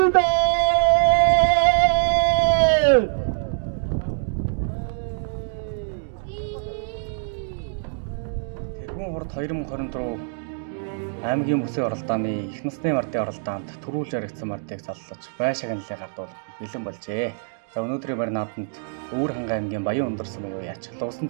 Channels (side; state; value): left; silent; digital silence